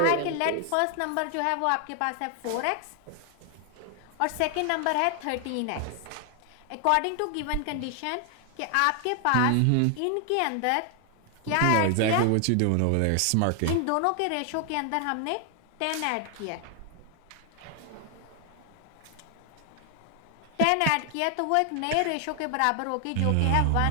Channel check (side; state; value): both; different; correlation 0.00